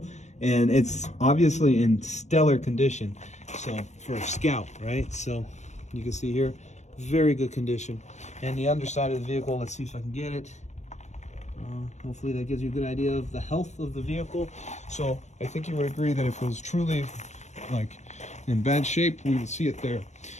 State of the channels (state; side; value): late; right; 0.33 ms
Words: And it's obviously in stellar condition. So for a Scout, right? So you can see here, very good condition. And the underside of the vehicle, let's see if I can get it. Hopefully that gives you a good idea of the health of the vehicle. So I think you would agree that if it was truly like in bad shape, we would see it there.